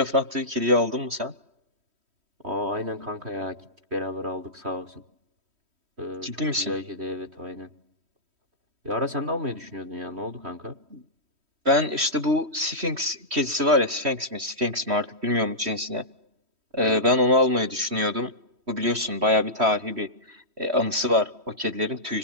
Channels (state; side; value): late; left; 3.1 ms